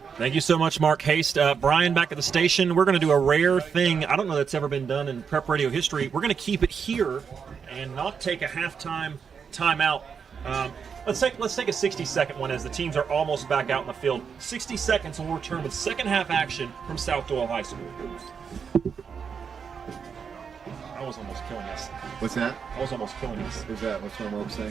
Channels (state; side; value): quieter; left; 6.5 dB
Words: Thank you so much, Mark Haste. Brian, back at the station. We're going to do a rare thing. I don't know that's ever been done in prep radio history. We're going to keep it here and not take a halftime timeout. Let's take a 60-second one as the teams are almost back out in the field. 60 seconds and we'll return with second half action from South-Doyle High School. I was almost killing us. What's that? I was almost killing us. Who's that? What's my mom